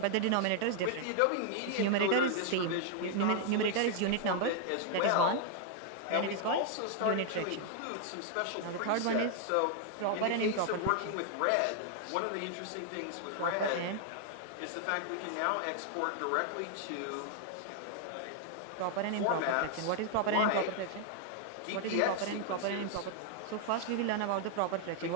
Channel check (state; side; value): different; both; correlation 0.00